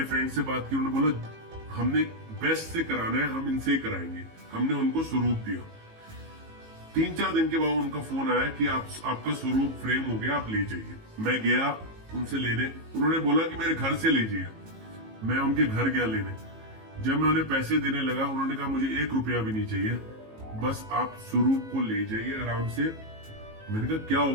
फ्रेंड से बात की, उन्होंने बोला हमने बेस्ट से कराना है, हम इनसे ही कराएंगे। हमने उनको स्वरूप दिया। 3-4 दिन के बाद उनका फोन आया कि आपका स्वरूप फ्रेम हो गया, आप ले जाइए। मैं गया उनसे लेने, उन्होंने बोला कि मेरे घर से ले जाइए। मैं उनके घर गया लेने। जब मैं उन्हें पैसे देने लगा, उन्होंने कहा मुझे 1 रुपया भी नहीं चाहिए, बस आप स्वरूप को ले जाइए आराम से। मैंने कहा क्या हो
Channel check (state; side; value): late; left; 18 ms